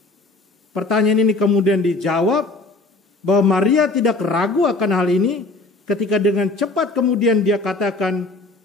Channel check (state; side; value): quieter; right; 3.2 dB